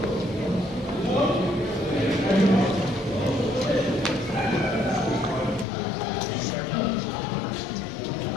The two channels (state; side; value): drops out; right; at 5.7 s